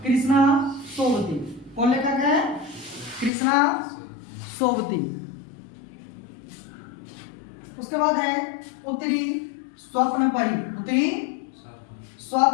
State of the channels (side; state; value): right; drops out; at 3.3 s